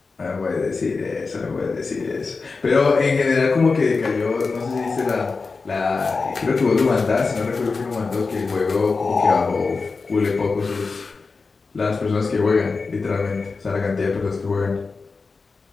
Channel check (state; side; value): quieter; right; 4.3 dB